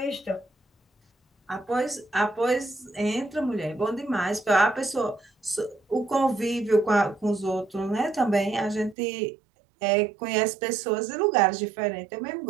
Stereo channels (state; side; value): drops out; left; at 9.0 s